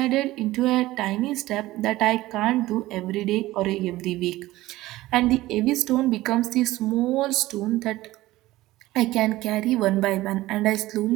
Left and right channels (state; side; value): quieter; left; 17.3 dB